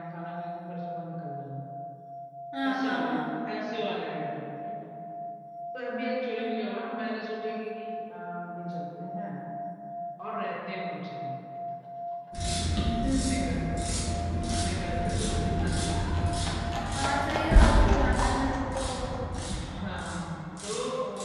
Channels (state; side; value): identical; both; correlation 1.00